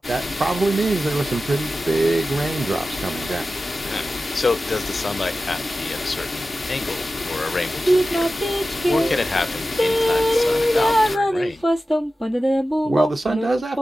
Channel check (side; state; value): both; normal; correlation 0.94